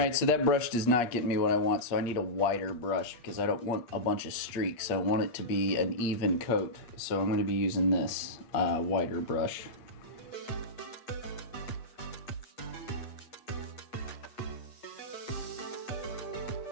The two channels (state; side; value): late; right; 8.4 ms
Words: so that brush does not get me what I want, so I need a wider brush because I don't want a bunch of streaks. I want it to be an even coat, so I'm going to be using this wider brush.